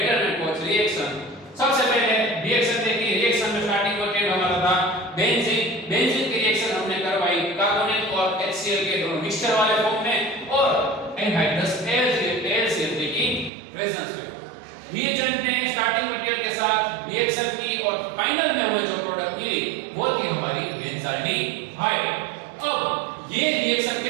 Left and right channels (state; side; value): drops out; left; at 13.5 s